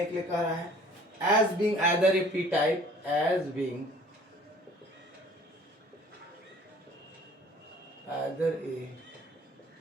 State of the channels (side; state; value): both; normal; correlation 0.53